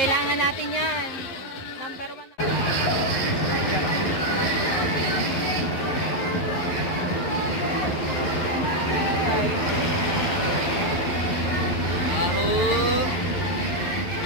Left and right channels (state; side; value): late; right; 11 ms